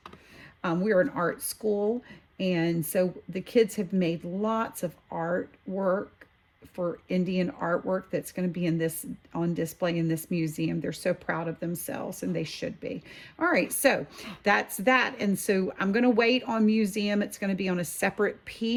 We're an art school, and so the kids have made lots of artwork for Indian artwork that's going to be in this on display in this museum. They're so proud of themselves, and they should be. All right, so that's that. And so I'm going to wait on museum. It's going to be on a separate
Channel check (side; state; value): both; identical; correlation 1.00